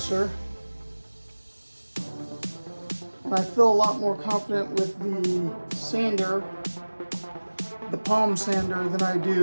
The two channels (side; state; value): both; inverted; correlation -1.00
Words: And I feel a lot more confident with the sander, the palm sander, than I